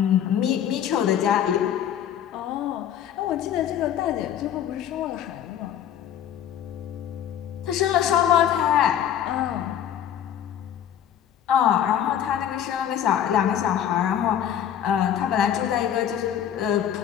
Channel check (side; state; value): right; quieter; 9.9 dB